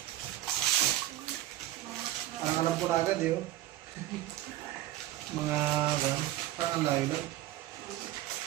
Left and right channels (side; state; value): left; quieter; 14.8 dB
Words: Parang alam ko na agad eh. Oh. Mga parang ang layo lang.